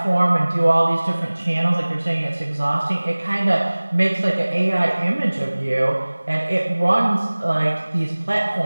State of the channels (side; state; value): both; inverted; correlation -1.00